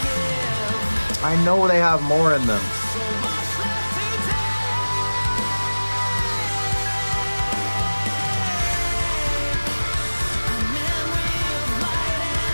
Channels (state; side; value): inverted; both; correlation -1.00